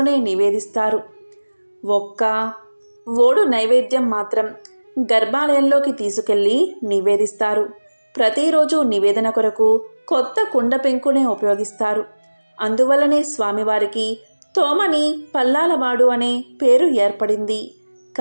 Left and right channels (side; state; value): both; inverted; correlation -1.00